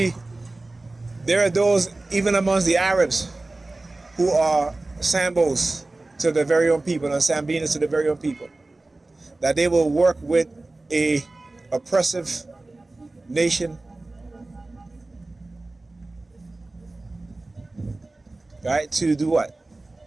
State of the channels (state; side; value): quieter; left; 3.0 dB